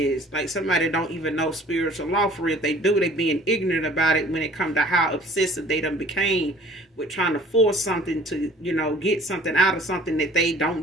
Like somebody don't even know spiritual law for real. If they do, they being ignorant about it when it comes to how obsessive they done became with trying to force something to, you know, get something out of something that they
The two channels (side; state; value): both; normal; correlation 0.50